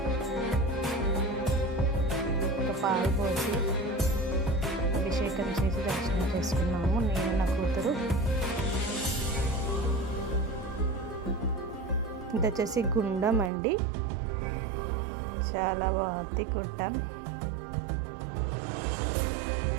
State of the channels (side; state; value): left; drops out; at 13.5 s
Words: ఒక పాలు పోసి అభిషేకం చేసి దర్శనం చేసుకున్నాము నేను, నా కూతురు. ఇది వచ్చేసి గుండం అండి, చాలా బాగుంది గుండం.